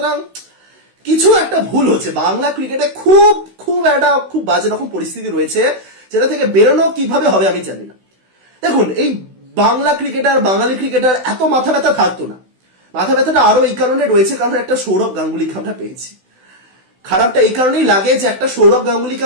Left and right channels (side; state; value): left; late; 16 ms